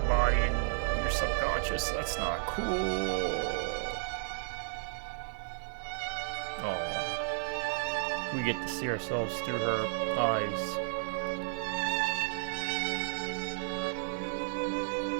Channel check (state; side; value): silent; left; digital silence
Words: and your subconscious. That's not cool. Oh, we get to see ourselves through her eyes.